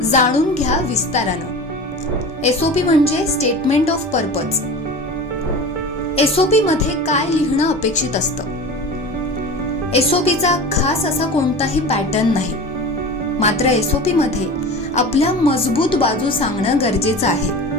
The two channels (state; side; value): normal; both; correlation 0.33